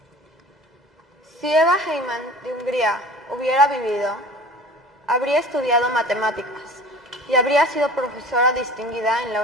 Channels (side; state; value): both; normal; correlation 0.41